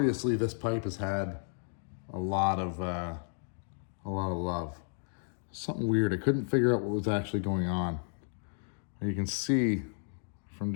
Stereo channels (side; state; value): right; silent; 56 dB below the other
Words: this pipe has had a lot of love. Something weird. I couldn't figure out what was actually going on. You can see from